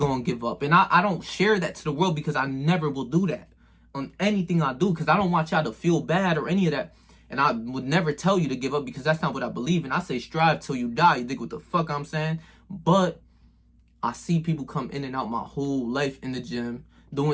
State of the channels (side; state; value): both; identical; correlation 1.00